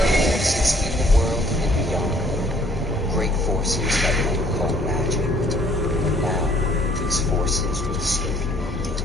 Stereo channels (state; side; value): normal; both; correlation 0.60